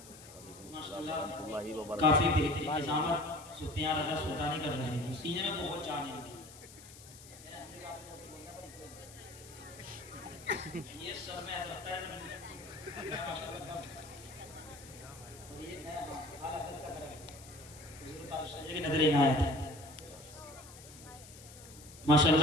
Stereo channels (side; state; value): left; noise; hiss, 18 dB below the sound